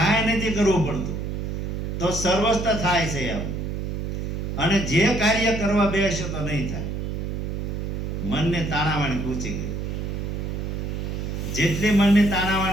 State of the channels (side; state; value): right; noise; hum, 3 dB below the sound